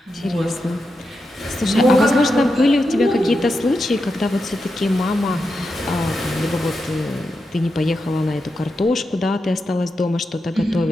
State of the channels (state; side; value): normal; both; correlation 0.87